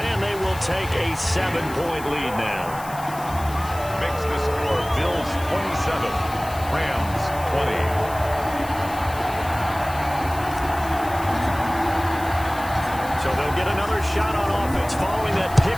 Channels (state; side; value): noise; left; hiss, 16 dB below the sound